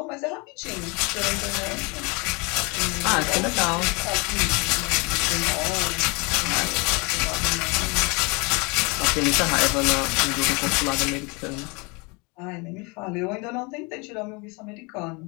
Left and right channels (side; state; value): right; quieter; 29.2 dB